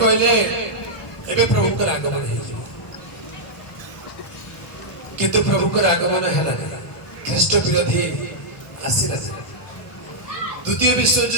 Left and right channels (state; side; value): late; right; 1.2 ms